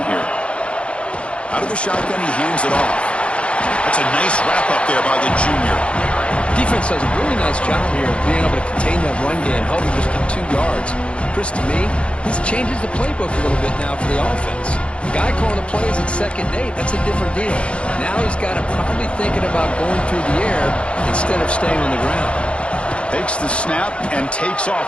here. Out of the shotgun, he hands it off. That's a nice wrap-up there by the junior. Defense does a really nice job here of being able to contain that run game, helping just get 2 yards. Chris, to me, this changes the playbook a little bit now for the offense. The guy calling the plays at 2nd and 8, that's a different deal. Now he's got to probably thinking about going through the air instead of staying on the ground. Takes the snap and takes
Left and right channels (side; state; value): right; late; 0.059 ms